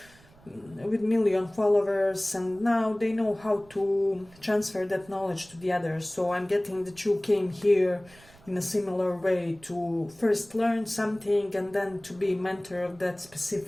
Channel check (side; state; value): right; noise; rumble, 25 dB below the sound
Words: with million followers, and now they know how to transfer that knowledge to the others. So I'm getting that you came here in a similar way to first learn something and then to be mentor of that